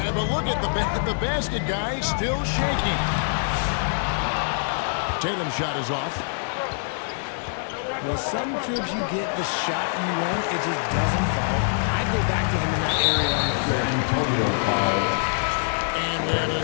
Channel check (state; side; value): silent; right; digital silence